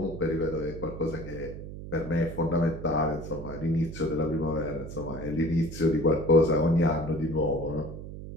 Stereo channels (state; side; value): noise; right; hum, 10 dB below the sound